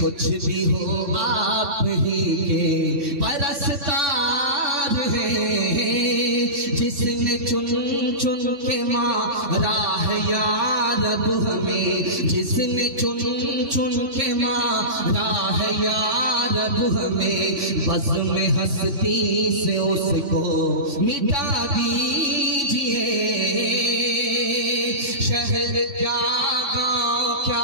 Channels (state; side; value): late; left; 3.1 ms